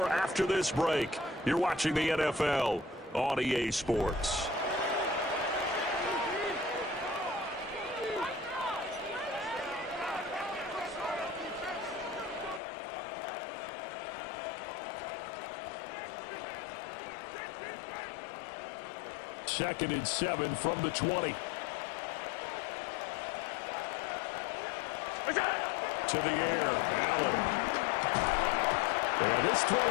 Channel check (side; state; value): right; drops out; at 12.6 s